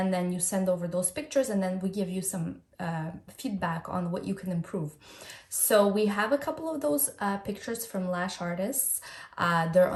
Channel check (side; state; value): both; identical; correlation 1.00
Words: then you send over those pictures, and then we give you some feedback on what you can improve. So we have a couple of those pictures from lash artists. They're